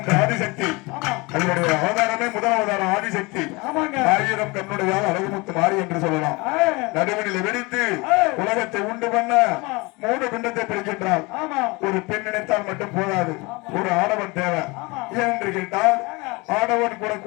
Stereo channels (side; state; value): right; quieter; 25.4 dB